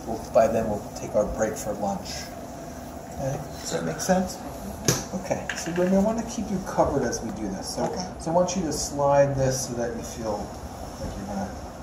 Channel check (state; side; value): identical; both; correlation 1.00